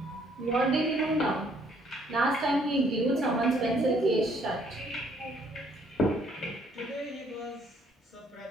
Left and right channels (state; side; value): normal; both; correlation 0.65